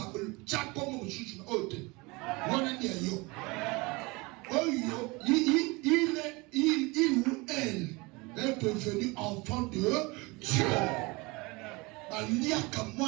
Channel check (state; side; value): quieter; left; 25.3 dB